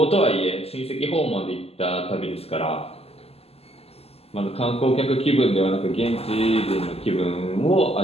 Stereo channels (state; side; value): late; right; 0.29 ms